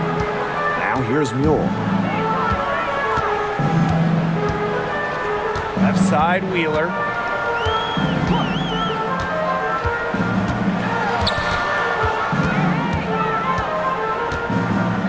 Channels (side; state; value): both; identical; correlation 1.00